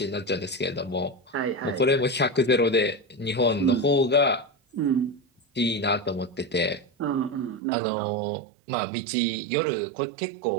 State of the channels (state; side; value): drops out; left; at 7.6 s